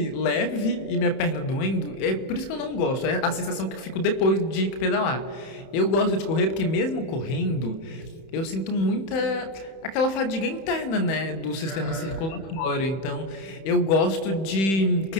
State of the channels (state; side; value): late; right; 31 ms